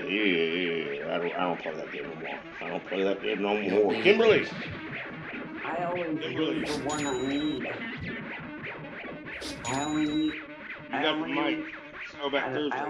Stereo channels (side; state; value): both; identical; correlation 1.00